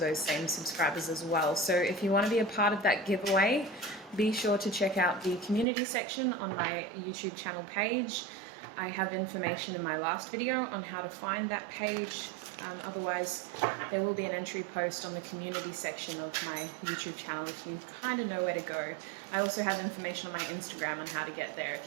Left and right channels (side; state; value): left; drops out; at 5.7 s